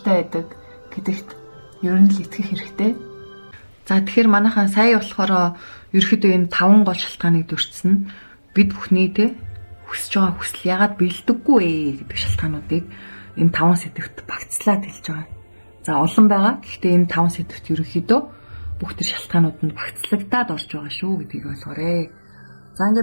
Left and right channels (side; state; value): both; inverted; correlation -1.00